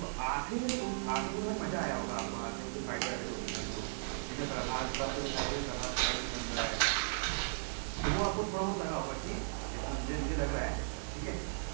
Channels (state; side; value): silent; left; digital silence